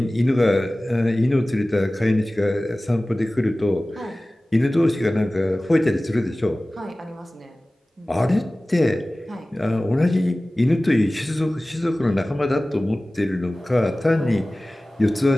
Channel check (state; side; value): normal; both; correlation 0.97